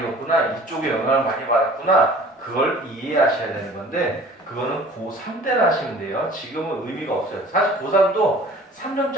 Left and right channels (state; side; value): normal; both; correlation 0.47